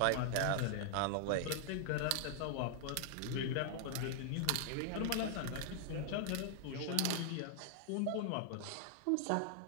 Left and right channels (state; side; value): different; both; correlation 0.00